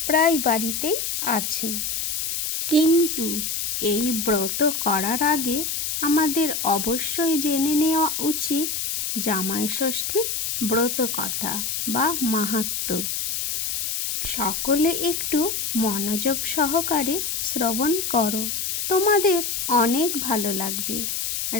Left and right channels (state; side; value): noise; left; hiss, 2 dB below the sound